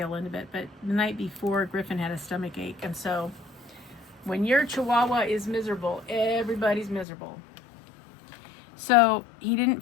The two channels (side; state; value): right; drops out; at 7.1 s